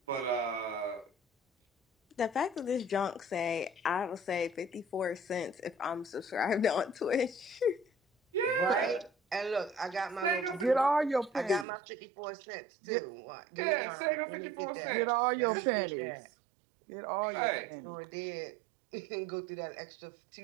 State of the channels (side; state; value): left; drops out; at 11.7 s